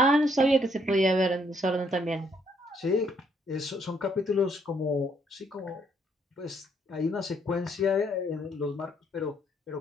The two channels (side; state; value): both; normal; correlation 0.70